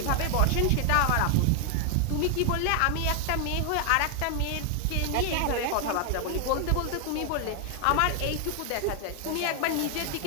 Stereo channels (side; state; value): both; different; correlation 0.00